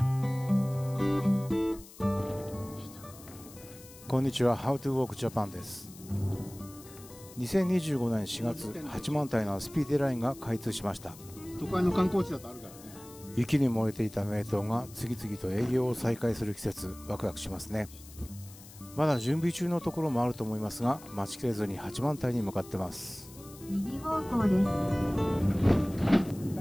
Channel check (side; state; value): left; noise; hiss, 19 dB below the sound